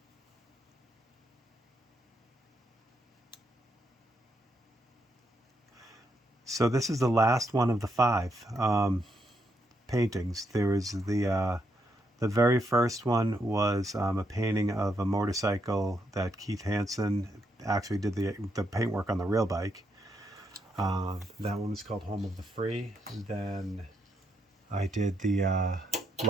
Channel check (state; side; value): normal; both; correlation 0.78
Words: So this is the last one of the 5 paintings. There was the very first one was a painting of a motorcycle that Keith Hansen actually did the paintwork on the real bike. That one was called Home of the Free. Then I did the